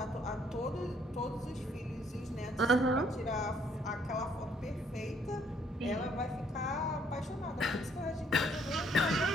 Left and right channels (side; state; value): both; normal; correlation 0.66